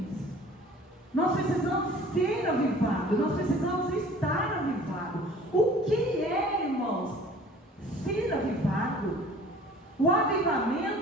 Nós precisamos ser avivados, nós precisamos estar avivados. O que é, irmãos, ser avivado? O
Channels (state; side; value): normal; both; correlation 0.48